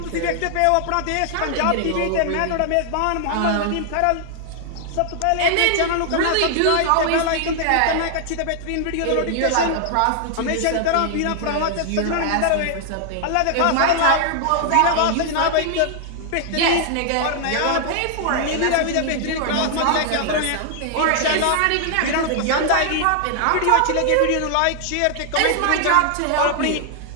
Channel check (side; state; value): both; different; correlation 0.00